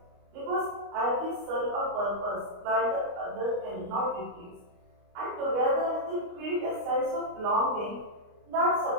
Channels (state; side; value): late; left; 29 ms